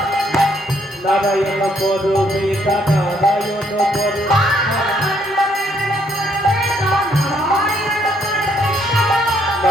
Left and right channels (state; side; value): normal; both; correlation 0.69